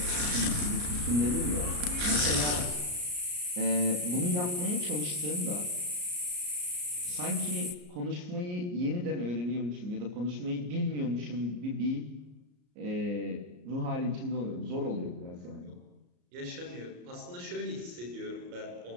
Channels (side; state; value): left; late; 34 ms